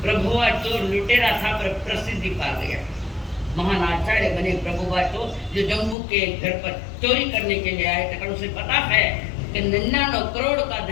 प्रभुआ चोर लुटेरा था पर प्रसिद्धि पा गया, महान आचार्य बने प्रभुआ चोर, जो जम्मू के घर पर चोरी करने के लिए आए थे। उसे पता है कि 99 करोड़ का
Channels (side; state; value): right; drops out; at 6.0 s